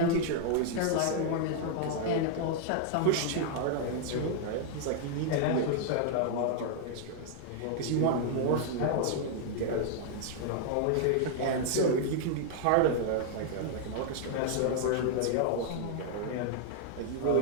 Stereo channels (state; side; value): different; both; correlation -0.01